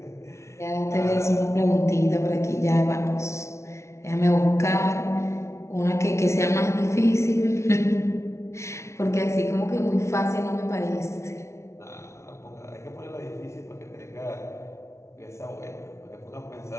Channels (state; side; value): late; right; 0.13 ms